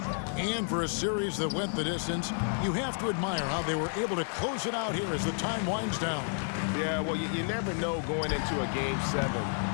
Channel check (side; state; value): right; silent; 57 dB below the other